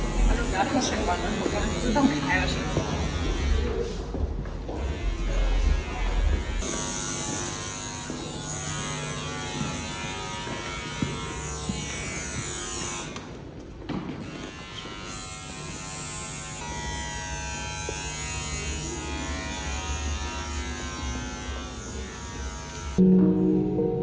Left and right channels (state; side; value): identical; both; correlation 1.00